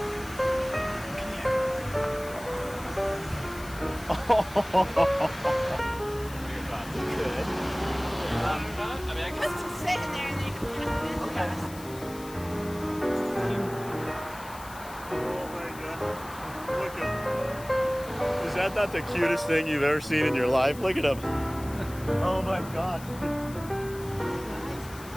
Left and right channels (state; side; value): noise; left; hiss, 17 dB below the sound